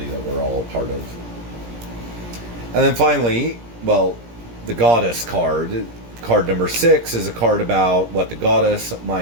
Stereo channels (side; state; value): left; late; 17 ms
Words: that we're all a part of. And then finally, well, the goddess card number 6, is a card about what the goddess